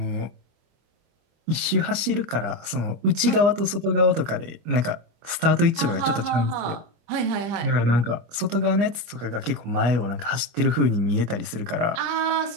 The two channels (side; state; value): left; late; 25 ms